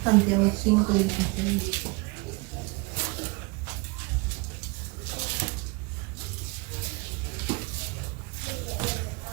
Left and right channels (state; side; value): quieter; left; 26.7 dB